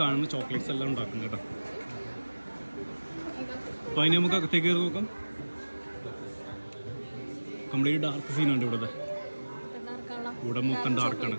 ചോക്ലേറ്റ്സ് എല്ലാം ഉണ്ടാക്കുന്നത് കേട്ടോ. അപ്പോൾ അതിന് നമുക്ക് അകത്തേക്ക് കയറി നോക്കാം. കംപ്ലീറ്റ് ഡാർക്ക് സീനുണ്ട് ഇവിടുത്തെ. ഇവിടെ മൊത്തം ഡാർക്കാണ്.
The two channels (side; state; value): both; inverted; correlation -1.00